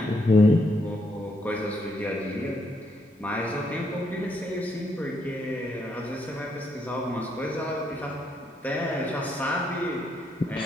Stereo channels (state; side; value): normal; both; correlation 0.76